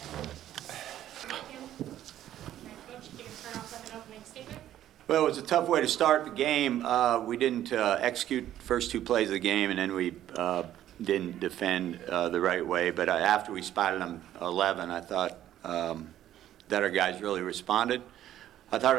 Coach, you can turn off like an opening statement. Well, it was a tough way to start the game. We didn't execute the first 2 plays of the game, and then we didn't defend the right way. But after we spotted them 11, I thought that our guys really responded. I thought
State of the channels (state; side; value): quieter; left; 12.2 dB